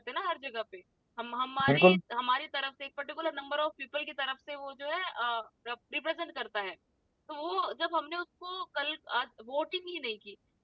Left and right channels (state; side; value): identical; both; correlation 1.00